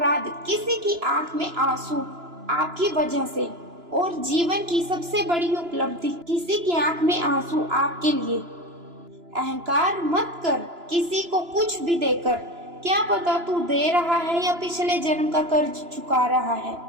किसी की आंख में आंसू आपकी वजह से, और जीवन की सबसे बड़ी उपलब्धि किसी की आंख में आंसू आपके लिए। अहंकार मत कर किसी को कुछ भी देकर, क्या पता तू दे रहा है या पिछले जन्म का कर्ज चुका रहा है।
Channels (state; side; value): late; left; 2.9 ms